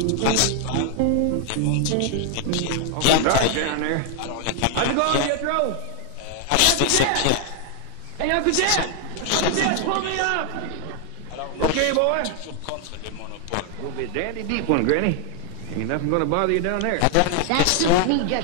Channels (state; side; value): different; both; correlation 0.00